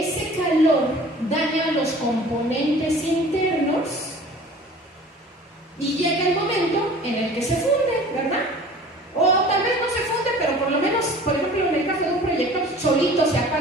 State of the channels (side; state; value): both; normal; correlation 0.45